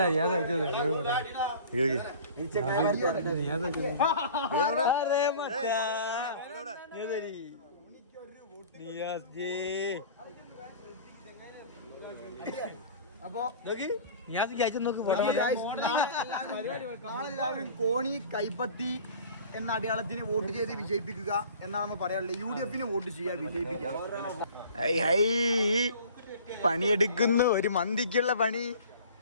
നാളെല്ലാവരും കോണി കൈപ്പത്തി എന്ന അടയാളത്തിന് വോട്ട് ചെയ്ത് വിജയിപ്പിക്കുക എന്നാണ് പറയാനുള്ളത്. UDF വോട്ട് ചെയ്യുക, വിജയിപ്പിക്കുക. പണിയെടുക്കുന്നു, ഒരു മന്തിക്കുള്ള പണി.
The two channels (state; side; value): inverted; both; correlation -0.44